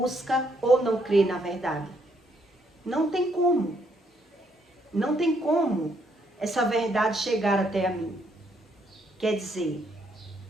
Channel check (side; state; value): both; normal; correlation 0.72